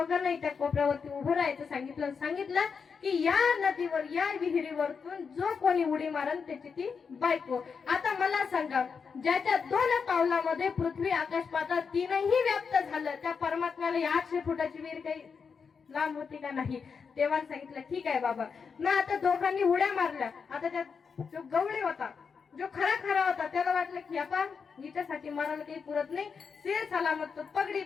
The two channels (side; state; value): right; quieter; 5.8 dB